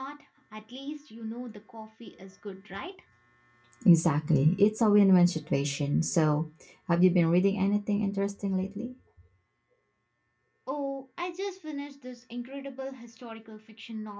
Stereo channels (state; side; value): identical; both; correlation 1.00